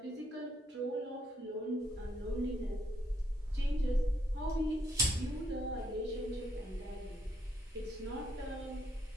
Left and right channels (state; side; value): normal; both; correlation 0.73